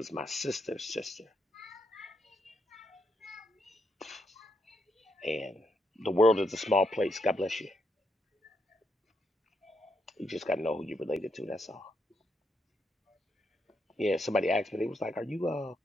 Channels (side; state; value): both; normal; correlation 0.80